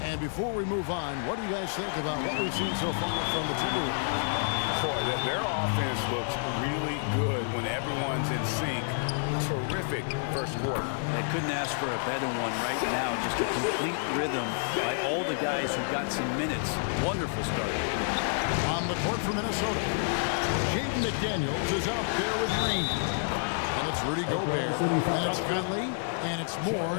And before we move on, what do you guys think about what we've seen so far from the Timberwolves? Boy, their offense looks really good when everyone's in sync. Terrific first quarter. I couldn't ask for a better one right now. Just a complete rhythm by all the guys who got some minutes. Wonderful start. On the court for Minnesota, Jaden McDaniels is out there with Green. And it's Rudy Gobert. And it's Conley. And it's Moore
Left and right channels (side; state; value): right; silent; digital silence